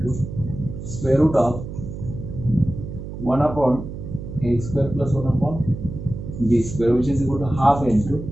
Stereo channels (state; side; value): noise; right; hum, 9 dB below the sound